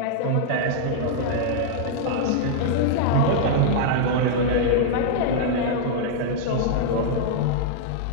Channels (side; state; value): both; different; correlation -0.01